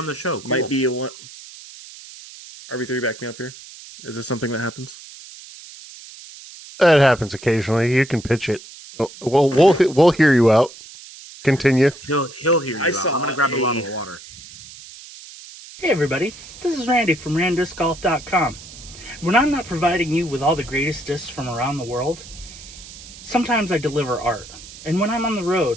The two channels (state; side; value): noise; right; hiss, 17 dB below the sound